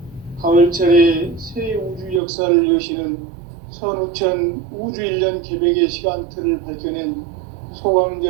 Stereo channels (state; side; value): drops out; left; at 2.2 s